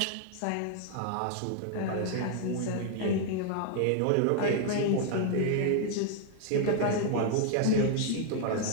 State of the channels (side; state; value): both; different; correlation -0.01